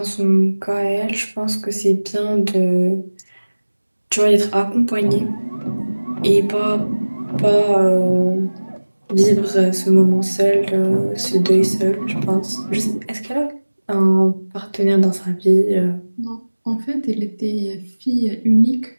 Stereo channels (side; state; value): both; inverted; correlation -1.00